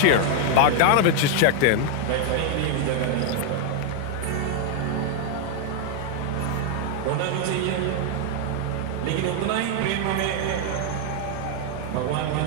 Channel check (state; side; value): different; both; correlation 0.00